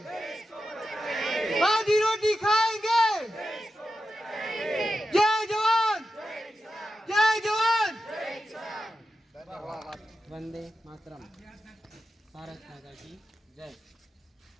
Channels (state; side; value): normal; both; correlation 0.90